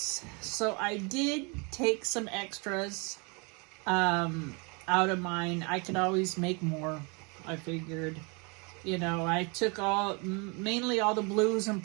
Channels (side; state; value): left; quieter; 31.6 dB